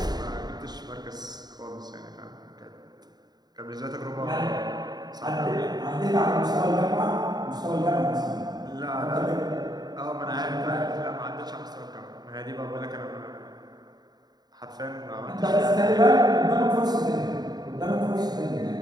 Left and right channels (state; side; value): late; left; 0.20 ms